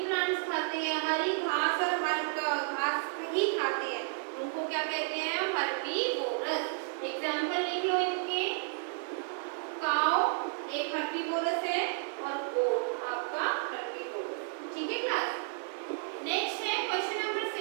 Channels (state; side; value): silent; left; digital silence